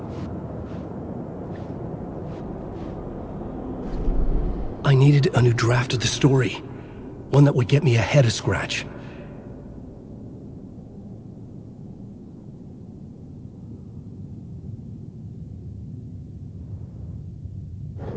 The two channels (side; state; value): both; identical; correlation 1.00